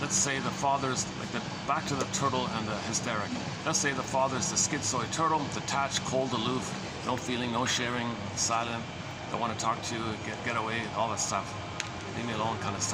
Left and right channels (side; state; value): both; identical; correlation 1.00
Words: father's like back to the turtle and the hysteric. Let's say the father's the schizoid turtle, detached, cold, aloof, no feeling, no sharing, silent, don't want to talk to you, get away, all that stuff. Leave me alone kind of